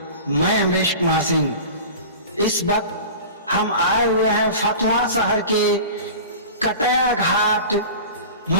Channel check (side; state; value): both; inverted; correlation -0.35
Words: मैं अमरीश कुमार सिंह। इस वक्त हम आए हुए हैं फतुहा शहर के कटैया घाट